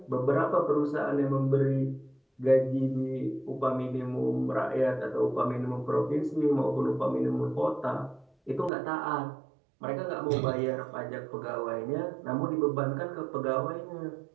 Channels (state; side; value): drops out; left; at 8.7 s